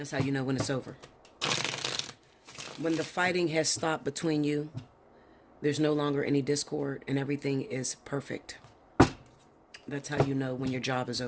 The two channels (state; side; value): identical; both; correlation 1.00